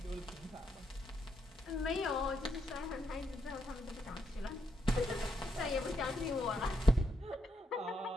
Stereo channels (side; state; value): both; normal; correlation 0.78